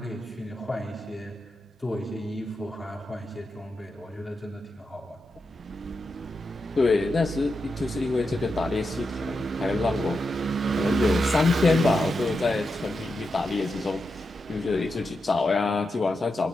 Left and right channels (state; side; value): normal; both; correlation 0.87